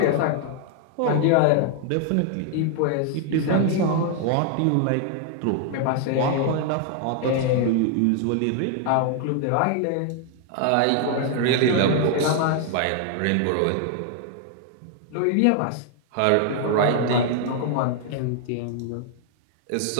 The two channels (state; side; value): different; both; correlation 0.00